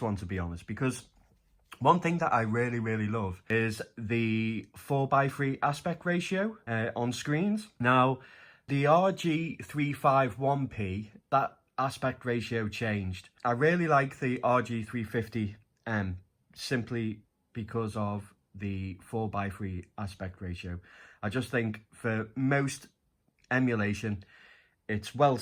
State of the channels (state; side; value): identical; both; correlation 1.00